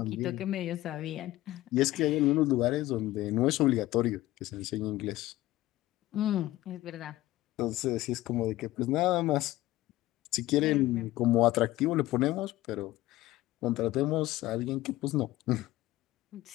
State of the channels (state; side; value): quieter; right; 16.6 dB